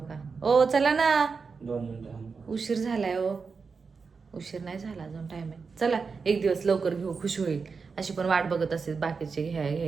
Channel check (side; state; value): left; quieter; 5.0 dB